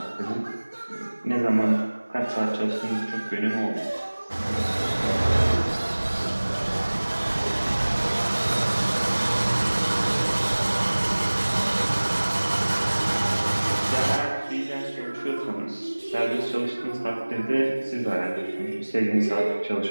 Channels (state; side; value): inverted; both; correlation -1.00